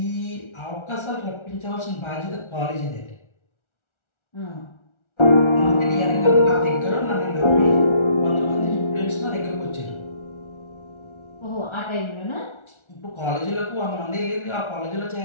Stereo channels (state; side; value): late; right; 1.4 ms